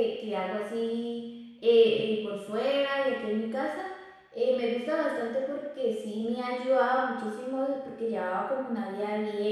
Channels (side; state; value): both; identical; correlation 1.00